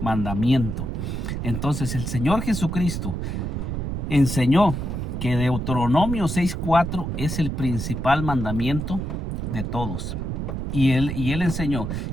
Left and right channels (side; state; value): right; noise; rumble, 3 dB below the sound